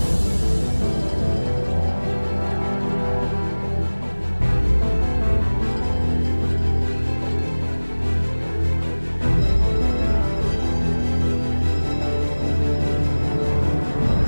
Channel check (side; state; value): both; inverted; correlation -1.00